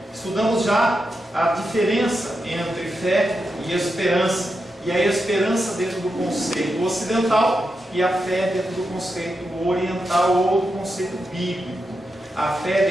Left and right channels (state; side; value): normal; both; correlation 0.87